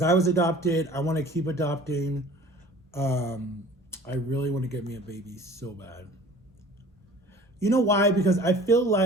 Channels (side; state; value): both; normal; correlation 0.46